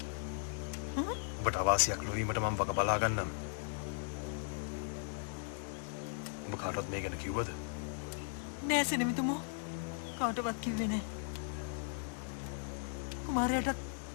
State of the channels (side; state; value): right; silent; digital silence